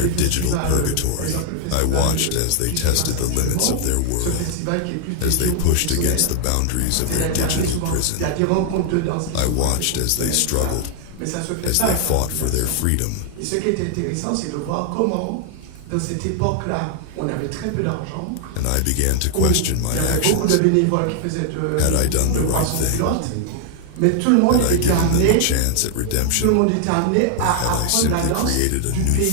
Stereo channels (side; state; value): both; different; correlation 0.00